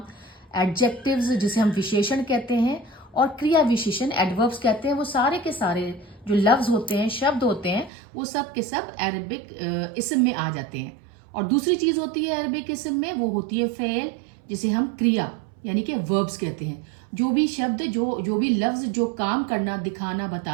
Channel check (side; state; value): left; drops out; at 7.9 s